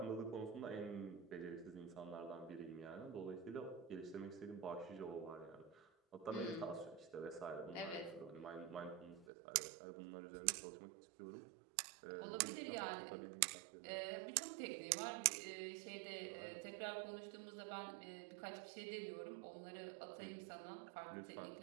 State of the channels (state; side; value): drops out; left; at 9.2 s